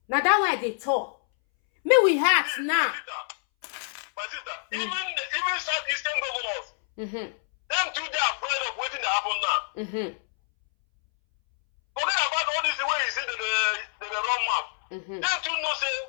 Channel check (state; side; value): silent; right; 60 dB below the other